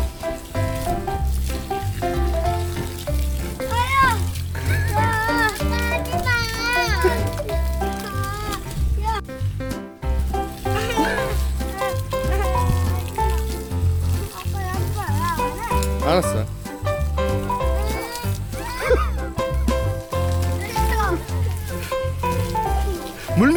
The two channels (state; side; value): identical; both; correlation 1.00